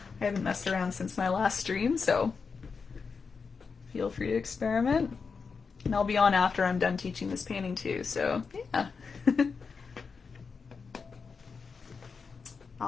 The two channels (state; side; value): quieter; right; 5.2 dB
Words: haven't messed around since my last stream, so feel free to experiment. And I'll be on after I'm done teaching this painting too, so yeah.